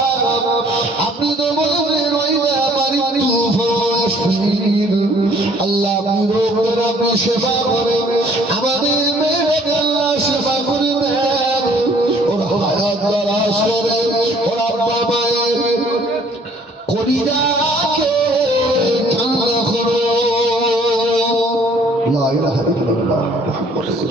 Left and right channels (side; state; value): both; normal; correlation 0.59